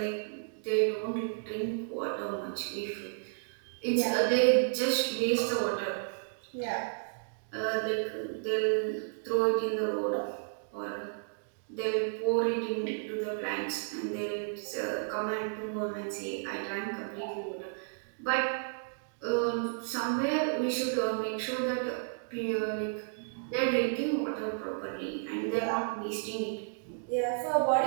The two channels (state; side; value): silent; left; digital silence